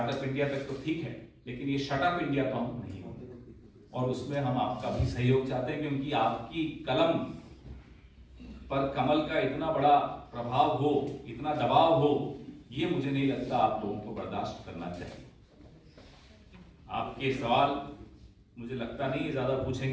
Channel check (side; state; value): both; identical; correlation 1.00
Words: इंडिया तक तो ठीक है, लेकिन ये शटअप इंडिया तो हम नहीं होंगे, और उसमें हम आपका भी सहयोग चाहते हैं, क्योंकि आपकी कलम पर कमल का इतना बड़ा प्रभाव हो, इतना दबाव हो, ये मुझे नहीं लगता आप लोगों को बर्दाश्त करना चाहिए। आपके सवाल मुझे लगता नहीं ज्यादा